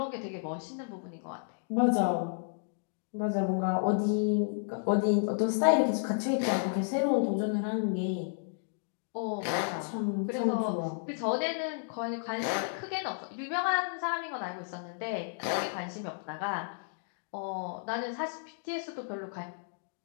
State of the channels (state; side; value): silent; right; digital silence